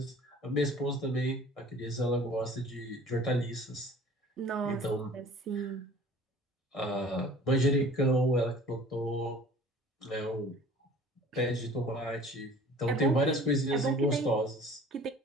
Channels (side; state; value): both; normal; correlation 0.47